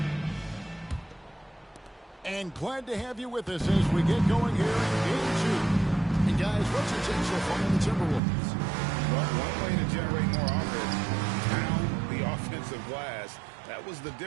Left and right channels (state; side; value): drops out; left; at 8.2 s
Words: And glad to have you with us as we get going here in Game 2. And guys, what's your take so far on the Timberwolves? Well, one way to generate more offense, pound the offensive glass. That was the